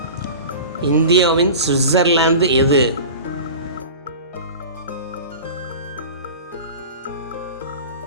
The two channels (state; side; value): inverted; both; correlation -0.35